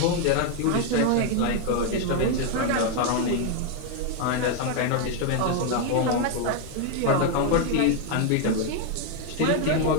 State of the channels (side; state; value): both; different; correlation 0.01